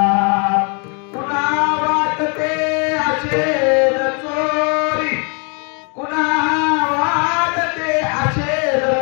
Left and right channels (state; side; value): quieter; right; 36.4 dB